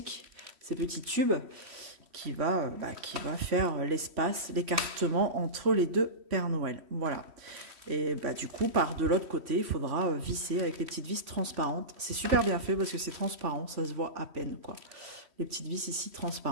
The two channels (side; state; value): left; late; 3.1 ms